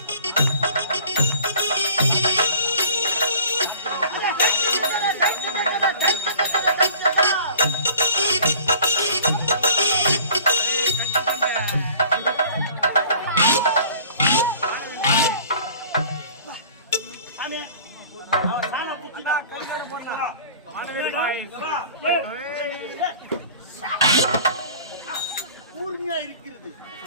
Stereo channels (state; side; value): inverted; both; correlation -0.47